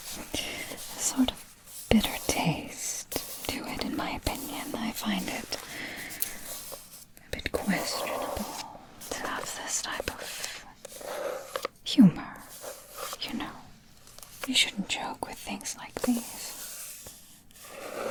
sort of bitter taste to it, in my opinion. I find it a bit questionable to have this type of humor. You know, you shouldn't joke with things like these.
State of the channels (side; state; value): both; identical; correlation 1.00